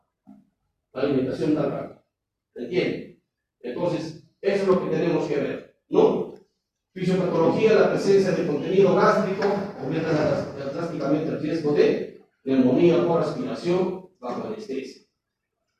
la alimentación tan rápida. ¿Entienden? Entonces, eso es lo que tenemos que ver, ¿no? Fisiopatología, la presencia de contenido gástrico aumenta drásticamente el riesgo de neumonía por aspiración bajo anestesia.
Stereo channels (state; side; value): identical; both; correlation 1.00